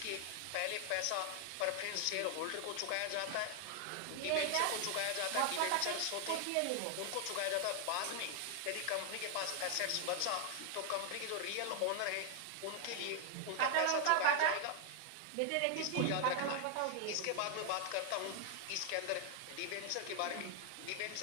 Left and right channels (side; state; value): both; different; correlation 0.00